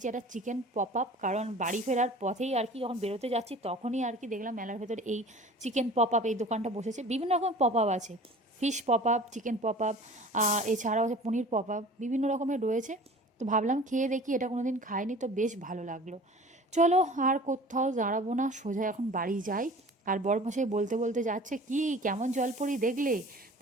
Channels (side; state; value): both; normal; correlation 0.43